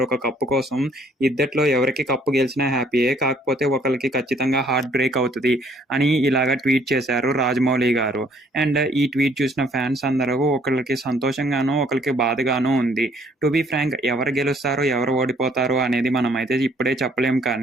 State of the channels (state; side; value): normal; both; correlation 0.62